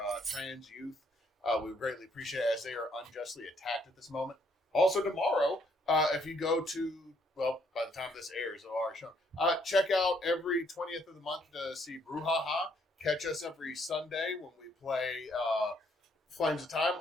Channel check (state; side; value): normal; both; correlation 0.69